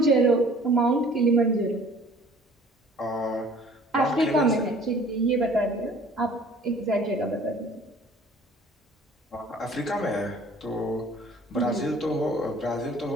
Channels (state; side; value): normal; both; correlation 0.52